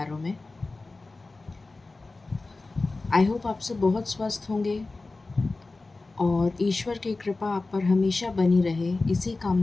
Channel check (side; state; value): right; quieter; 3.4 dB